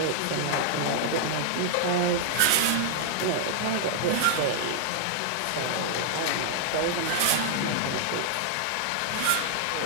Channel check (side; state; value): both; different; correlation -0.01